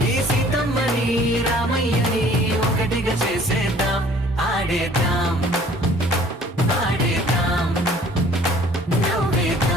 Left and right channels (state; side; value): normal; both; correlation 0.54